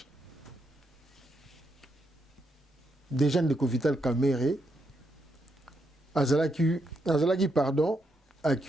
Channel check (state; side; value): normal; both; correlation 0.80